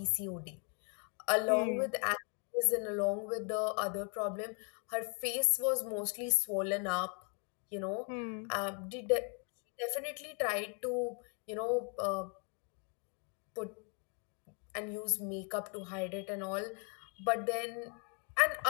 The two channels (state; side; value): quieter; right; 37.8 dB